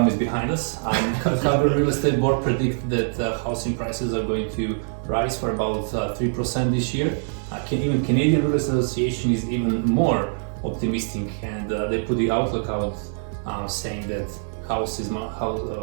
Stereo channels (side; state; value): left; silent; digital silence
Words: is behind us. Calgary Real Estate Board predicts that housing prices are going to rise for about 3% this year. Even Canadian Real Estate Association is even more optimistic, and they put the outlook out saying that house